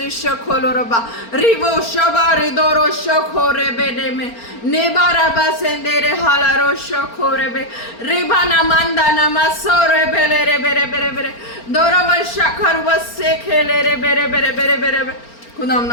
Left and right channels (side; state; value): right; late; 4.4 ms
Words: खोलो रबा रिवो शबा रिदोरो शोखो रे बेने में नेबा रबा सेंदेरे हाला रो शोखो रे बे रिबा नमंदा नमसो रे बेले रे बेरे बेरे बेरे दोरो वर्षा खर वसे खेले रे बेरे बेरे बेरे बेरे बेरे। खुदा हम